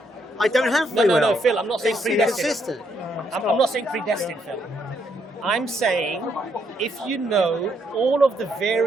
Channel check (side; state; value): both; normal; correlation 0.74